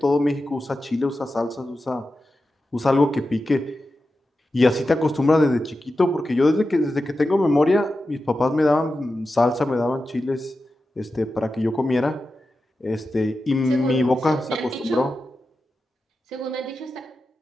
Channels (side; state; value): both; normal; correlation 0.92